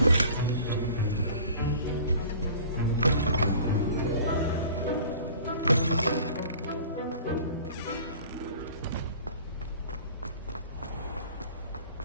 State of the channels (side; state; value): both; inverted; correlation -0.45